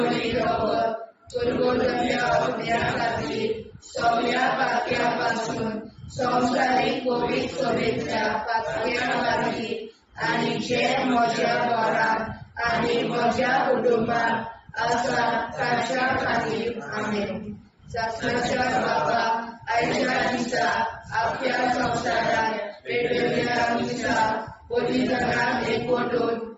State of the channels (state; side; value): identical; both; correlation 1.00